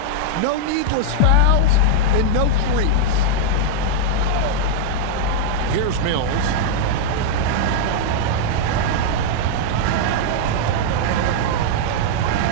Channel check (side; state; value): both; different; correlation -0.01